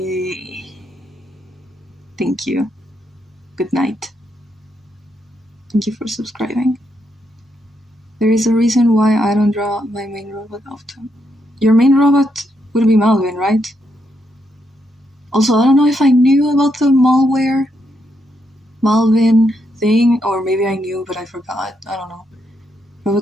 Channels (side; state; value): both; normal; correlation 0.79